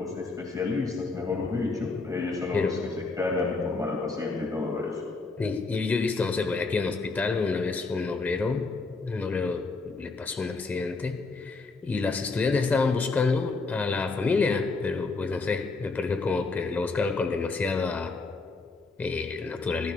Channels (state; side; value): quieter; right; 3.8 dB